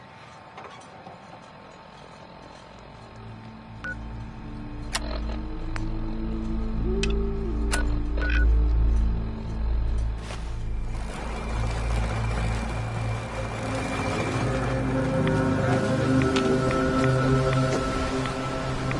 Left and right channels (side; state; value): both; identical; correlation 1.00